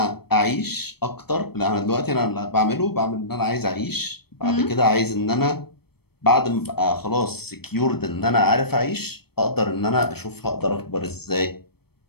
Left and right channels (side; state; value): right; late; 0.96 ms